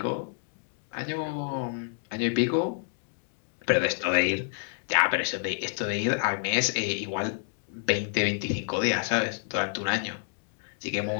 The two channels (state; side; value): silent; right; 59 dB below the other